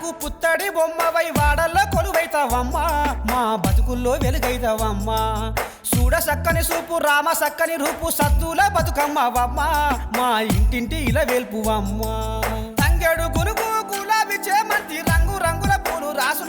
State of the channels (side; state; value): both; identical; correlation 1.00